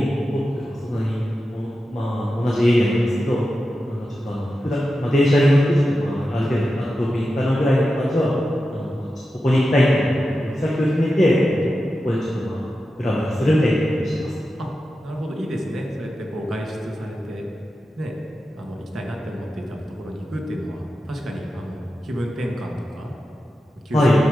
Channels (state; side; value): normal; both; correlation 0.91